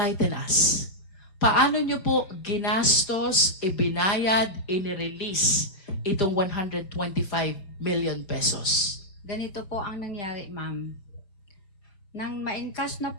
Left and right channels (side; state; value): right; late; 5.0 ms